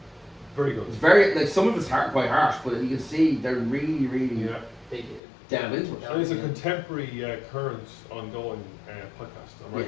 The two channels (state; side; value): drops out; right; at 5.2 s